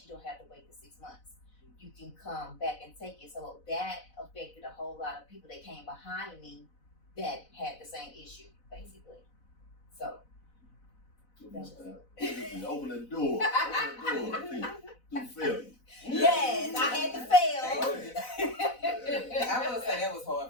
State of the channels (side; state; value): right; late; 4.0 ms